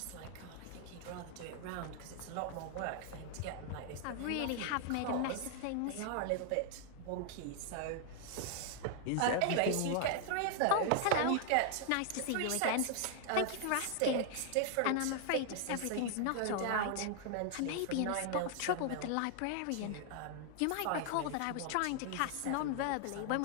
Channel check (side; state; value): both; different; correlation 0.00